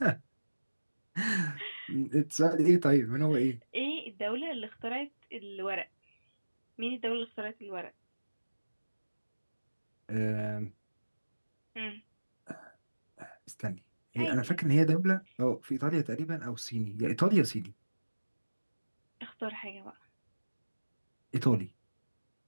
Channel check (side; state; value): both; inverted; correlation -1.00